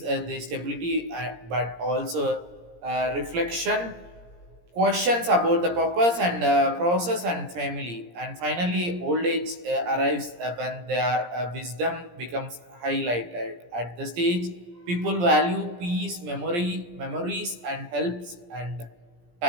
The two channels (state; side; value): late; left; 17 ms